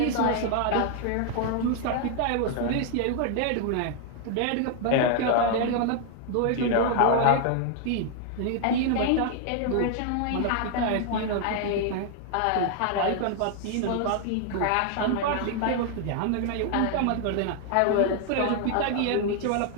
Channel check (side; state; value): both; different; correlation 0.00